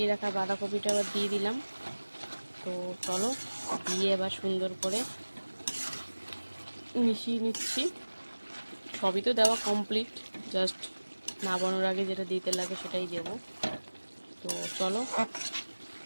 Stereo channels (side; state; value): both; inverted; correlation -1.00